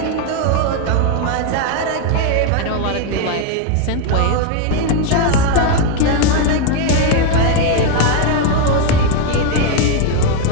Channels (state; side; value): different; both; correlation 0.01